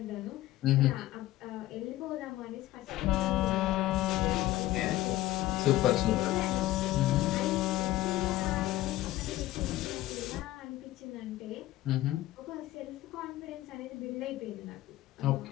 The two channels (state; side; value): quieter; right; 15.7 dB